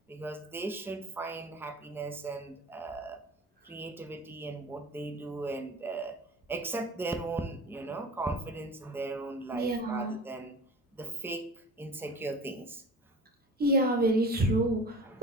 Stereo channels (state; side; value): normal; both; correlation 0.38